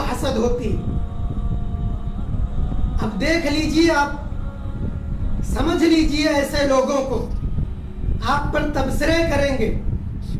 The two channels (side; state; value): both; identical; correlation 1.00